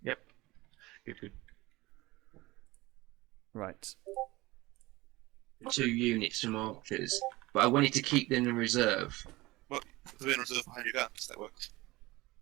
Yep. Good. Right. 2 units from archers, but I wanted to keep them in reserve. Well, put them in reserve behind your guns, that works.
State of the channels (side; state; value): left; quieter; 20.5 dB